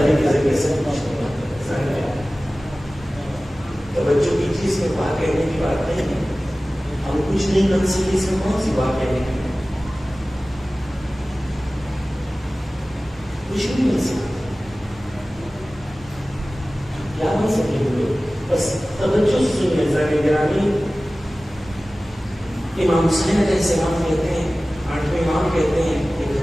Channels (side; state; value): both; normal; correlation 0.97